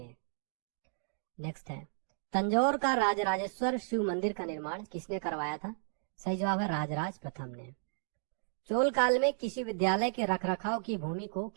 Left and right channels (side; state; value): left; silent; digital silence